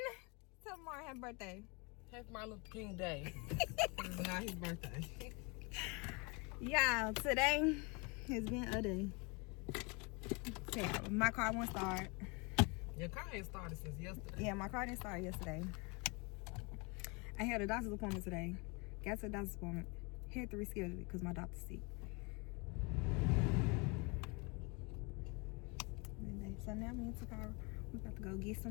Tell Martin happy birthday. Happy Martin Luther King Day. It's not his birthday. Y'all, today has been a day. Yeah, my car won't start. Your car ain't started since yesterday. Yeah, my car didn't start yesterday. I had a doctor's appointment today. Got to the doctor's appointment. Had to reschedule it because my doctor's sick. So now me and Takara, we about to go get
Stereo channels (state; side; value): quieter; right; 29.9 dB